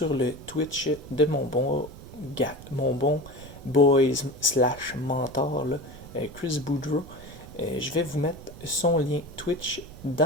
le Twitch de mon bon boys slash mentor, là, Chris Boudreau, je vais vous mettre son lien Twitch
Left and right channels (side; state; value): right; noise; rumble, 16 dB below the sound